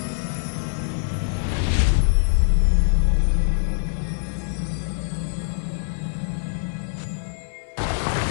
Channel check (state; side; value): silent; right; digital silence